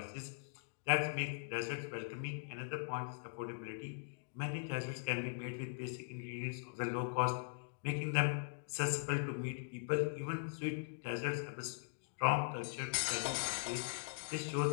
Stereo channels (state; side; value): silent; right; digital silence